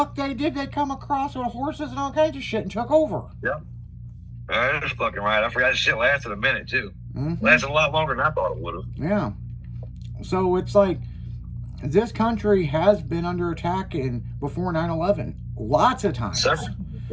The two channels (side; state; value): both; identical; correlation 1.00